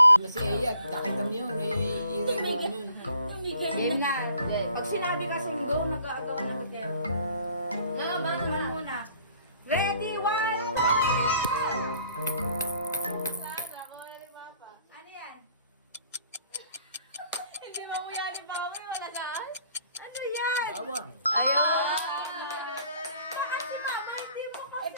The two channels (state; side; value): inverted; both; correlation -0.58